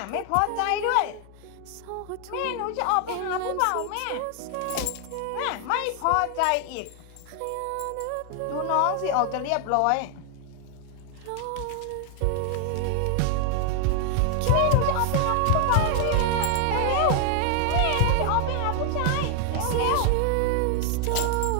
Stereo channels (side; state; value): both; different; correlation 0.00